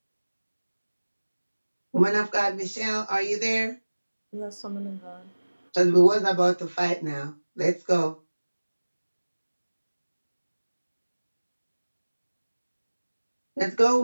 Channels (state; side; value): inverted; both; correlation -1.00